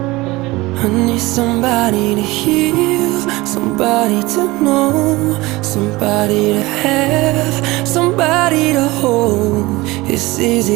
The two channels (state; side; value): quieter; left; 21.0 dB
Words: I need somebody to heal, somebody to know, somebody to have, somebody to hold. It's